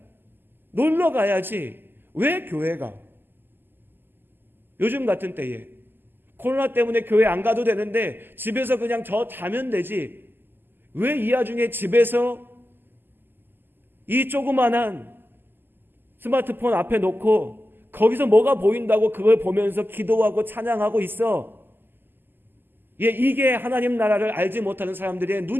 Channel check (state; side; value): late; left; 0.095 ms